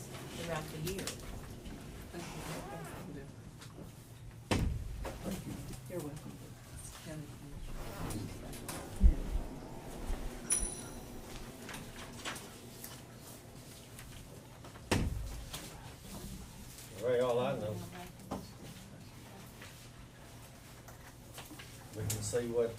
throughout the year. Thank you. You're welcome. County Commissioner. Ray, all I know, we can see what,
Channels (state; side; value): identical; both; correlation 1.00